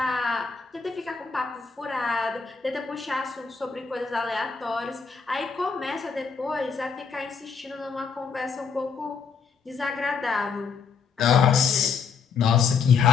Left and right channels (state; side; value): quieter; right; 5.8 dB